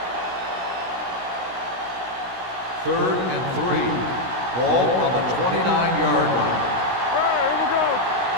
3rd and 3. Ball on the 29-yard line. All right, here we go.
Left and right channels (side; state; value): left; late; 16 ms